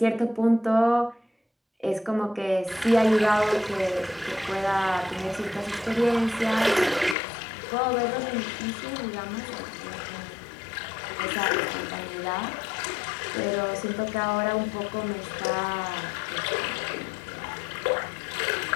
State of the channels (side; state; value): right; drops out; at 7.2 s